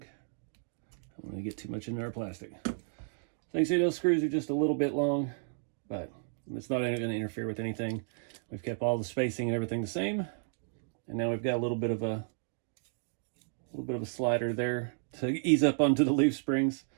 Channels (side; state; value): left; silent; digital silence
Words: I don't want to get too much into our plastic. So you can see those screws are just a little bit long, but it's not going to interfere with anything. We've kept all the spacing and everything the same, and now we've got a little bit of a slider there to ease up onto the leaf springs